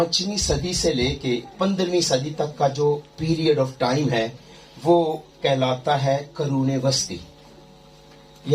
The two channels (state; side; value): identical; both; correlation 1.00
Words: صدی سے لے کے 15ویں صدی تک کا جو پیریڈ آف ٹائم ہے وہ کہلاتا ہے قرون وسطی